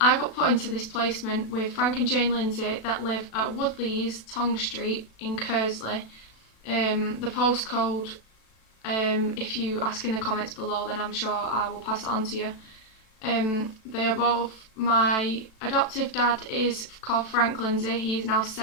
got put into this placement with Frank and Jane Lindsay that live at Woodleys, Tong Street in Kersley. The postcode, if you ask in the comments below, then I'm sure I will pass it on to you. They are both, my adoptive dad is called Frank Lindsay, he is now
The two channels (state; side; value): late; right; 36 ms